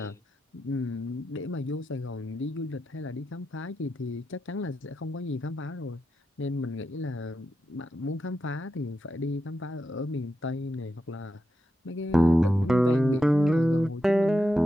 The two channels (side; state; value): both; normal; correlation 0.87